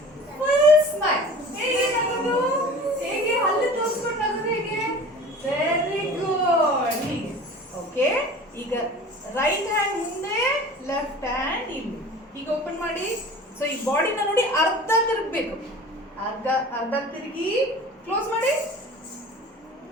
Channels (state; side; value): normal; both; correlation 0.41